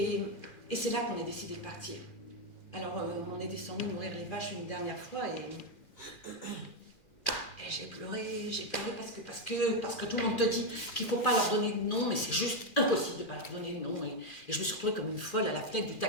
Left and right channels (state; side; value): late; right; 2.4 ms